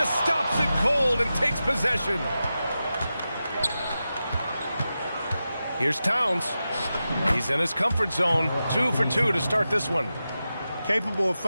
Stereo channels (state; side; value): inverted; both; correlation -0.92